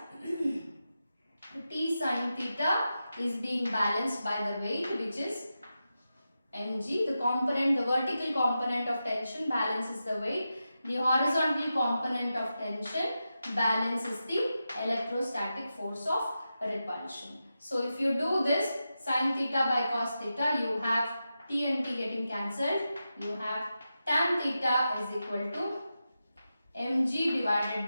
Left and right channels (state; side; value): inverted; both; correlation -0.90